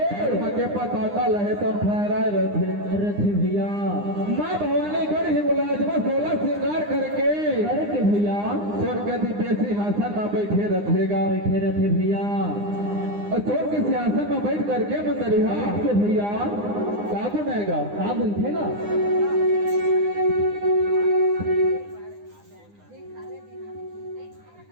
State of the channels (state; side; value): late; left; 9.8 ms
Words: के पताका लहे तब फहराए रहते रथे भैया माँ भवानी कर ही मुलाजमा 16 श्रृंगार करके अरे के भैया स्वर्ग के दिव्य सिंहासन में बैठे रहेगा बैठे रथे भैया और स्वर्ग के सिंहासन में बैठ करके मंदरिहा के भैया का गुनेगा का बनतेगा